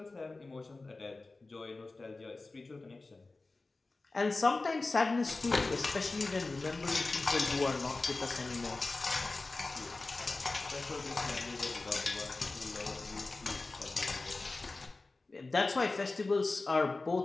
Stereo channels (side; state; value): right; quieter; 3.4 dB